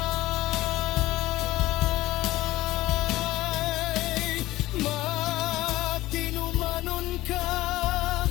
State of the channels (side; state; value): right; quieter; 17.1 dB